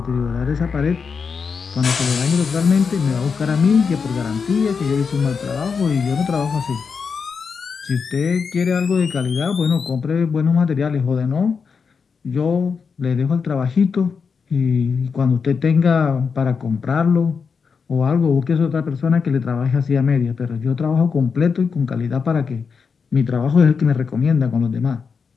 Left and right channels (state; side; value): quieter; right; 5.6 dB